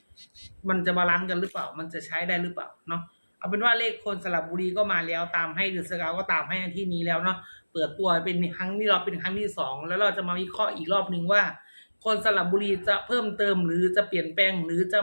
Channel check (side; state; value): both; inverted; correlation -1.00